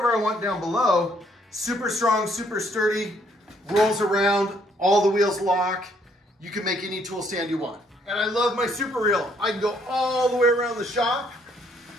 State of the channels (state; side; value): normal; both; correlation 0.68